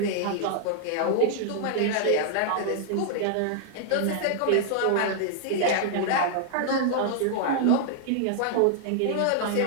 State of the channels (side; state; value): both; different; correlation -0.01